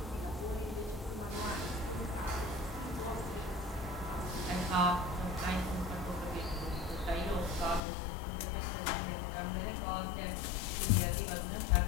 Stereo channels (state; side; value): drops out; right; at 7.8 s